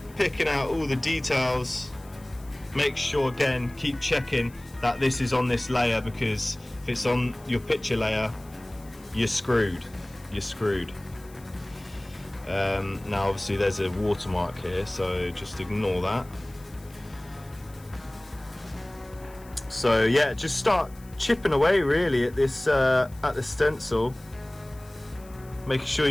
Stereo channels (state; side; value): noise; left; hiss, 25 dB below the sound